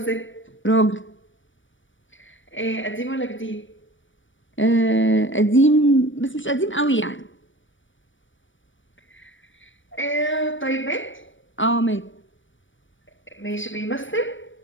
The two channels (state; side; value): late; right; 0.56 ms